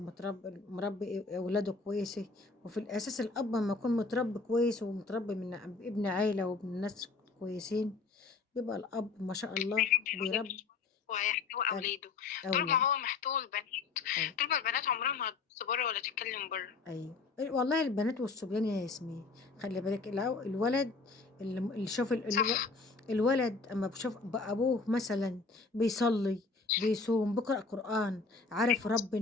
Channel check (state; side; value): quieter; right; 4.2 dB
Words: مربي أولاده كويسة، وفي الأساس الأب لما يكون متربي كويس ومتربي من ابن عيلة وابن ناس كويسين، بيبقى الأب ما شاء الله هيربي أولاده بيربي وهيحتوي أب- أولاده. طول ما أولاد. هو محتوي البنات، أيوة. طول ما البنات عمرها ما هتبص بره ولا تتكلم بره. أيوة والله البنات والصبيان يا ياسمين، خلي بالك الولد اللي شوف صح. الولد أما بشوف أبوه مثلا بيصلي، بيصوم، بيقرأ قرآن، عارف